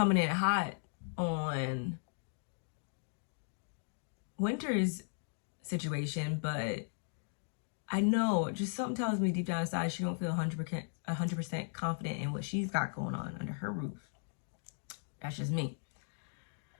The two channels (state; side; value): silent; right; digital silence